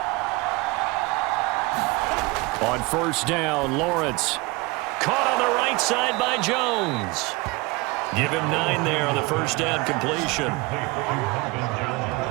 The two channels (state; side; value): quieter; left; 24.2 dB